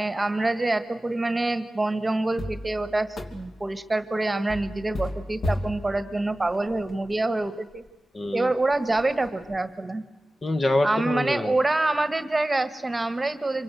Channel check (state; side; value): normal; both; correlation 0.97